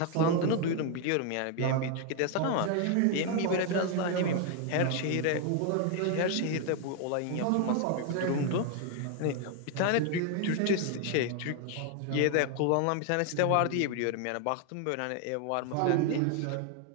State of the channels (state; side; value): different; both; correlation 0.01